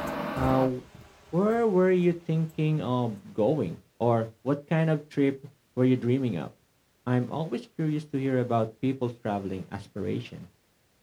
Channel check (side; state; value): both; identical; correlation 1.00